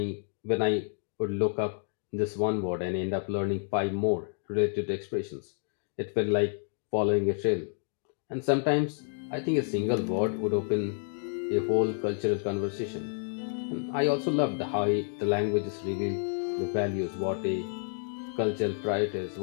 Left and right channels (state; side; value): silent; right; digital silence